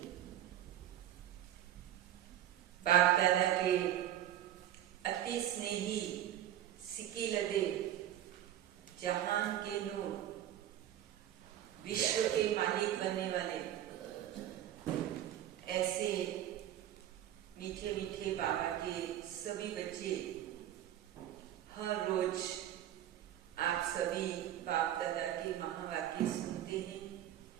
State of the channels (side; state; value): left; quieter; 11.7 dB